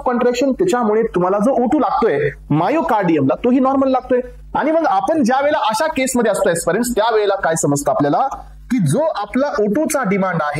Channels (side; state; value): both; identical; correlation 1.00